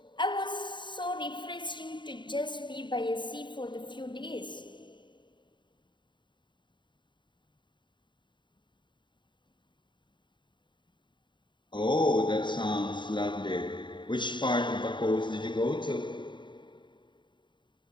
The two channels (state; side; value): late; right; 0.23 ms